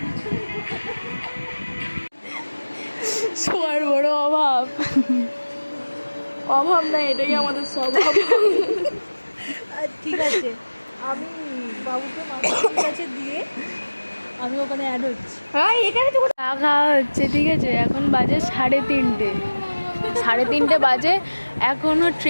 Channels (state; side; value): inverted; both; correlation -1.00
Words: সবার বড় অভাব। অভাব না, এটাই আমাদের স্বভাব। ঠিক আছে, আমি বাবুকে মামার কাছে দিয়ে আমি ওখানে অ্যাড হচ্ছি। হ্যাঁ, এখানে তো চা খাওয়া হচ্ছে, ঠিক আছে। এখন বাজে 3:30। 3:30 বাজে, এখনো